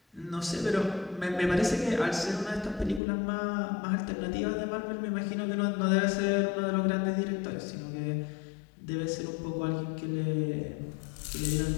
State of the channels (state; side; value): drops out; right; at 3.0 s